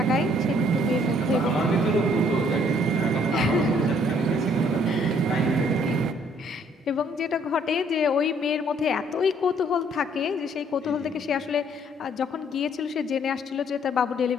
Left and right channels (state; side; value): normal; both; correlation 0.63